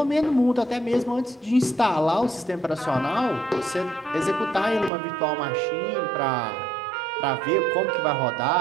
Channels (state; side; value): drops out; left; at 4.9 s